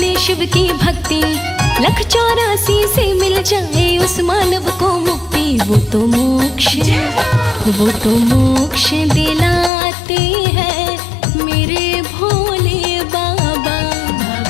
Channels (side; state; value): right; drops out; at 9.7 s